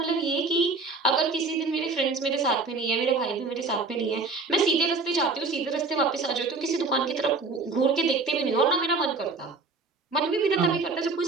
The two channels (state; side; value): quieter; left; 3.9 dB